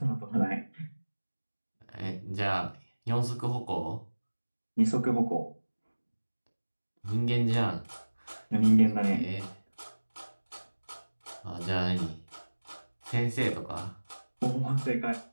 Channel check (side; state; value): both; inverted; correlation -1.00